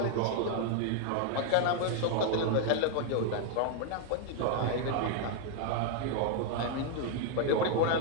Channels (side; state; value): both; different; correlation 0.00